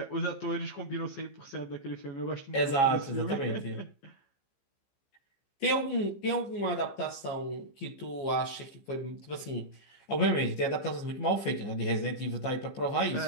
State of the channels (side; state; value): right; late; 15 ms